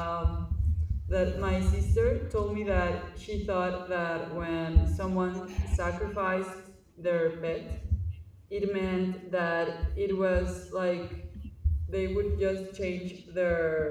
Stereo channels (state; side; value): identical; both; correlation 1.00